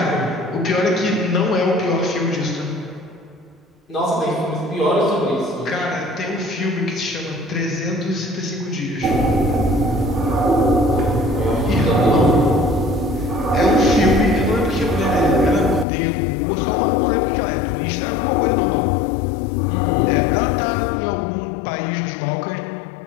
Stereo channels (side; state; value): right; drops out; at 15.9 s